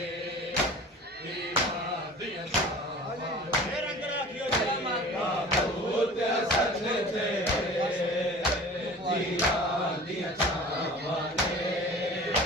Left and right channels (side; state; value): both; normal; correlation 0.42